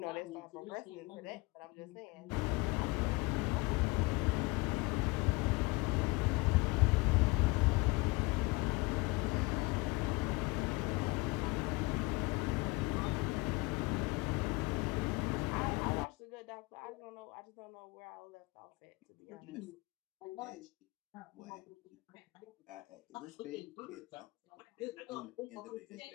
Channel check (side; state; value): right; quieter; 24.3 dB